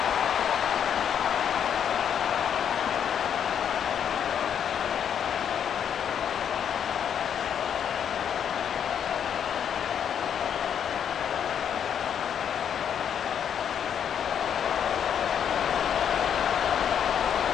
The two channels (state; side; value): quieter; right; 8.5 dB